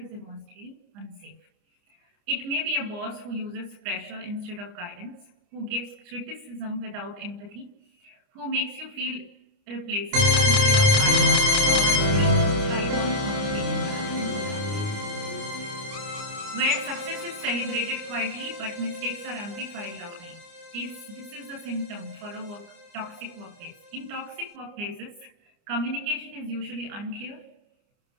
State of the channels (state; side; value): late; left; 30 ms